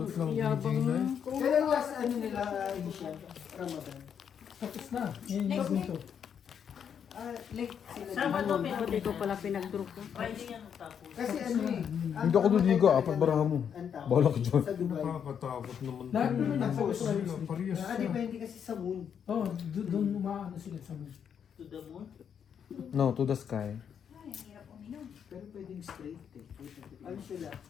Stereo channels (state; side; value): quieter; right; 7.9 dB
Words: lang Yabang Gina eh. ko. Kailan last ano nila edition? Ramadan? Tapos na. Yan yung dito. Late sila. Sabado, dito. pero Hindi ko pala pinag-draw ko. Friday yan tapos. Kasi ano eh. Hindi ako luligo, apat baraha mo. Bahala ka dyan. Sa Dubai. Nakakatakot naman. Lahat naman Ang nasa boss Australia. nila, parehas na. Nakadepende kasi sa moon. Oo, doon umaano sila sa moon. To the moon. No, to the sky. Pero pwedeng straight eh. Ano sila?